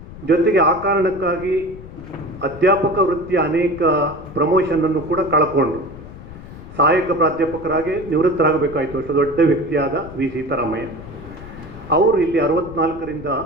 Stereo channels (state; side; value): noise; left; rumble, 15 dB below the sound